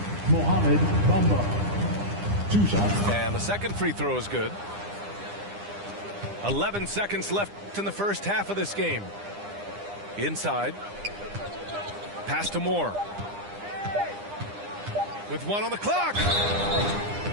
Mohamed Bamba. 2 shots. And the second free throw is good. 11 seconds left in the first half of this game. Inside. Pass to Moore. With one on the clock.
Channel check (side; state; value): left; late; 9.9 ms